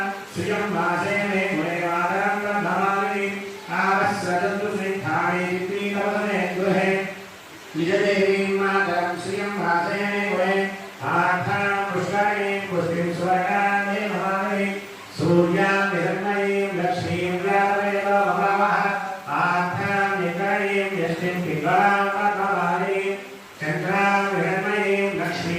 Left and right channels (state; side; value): identical; both; correlation 1.00